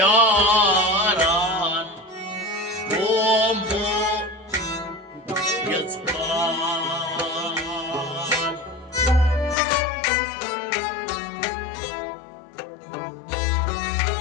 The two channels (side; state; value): right; drops out; at 9.6 s